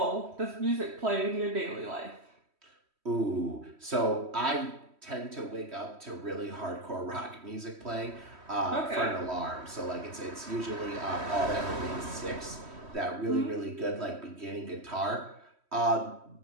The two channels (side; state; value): left; late; 3.1 ms